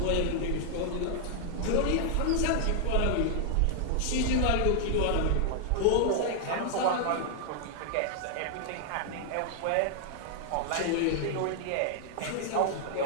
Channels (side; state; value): both; different; correlation 0.00